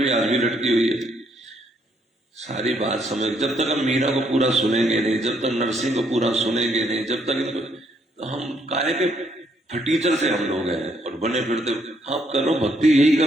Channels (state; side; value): normal; both; correlation 0.71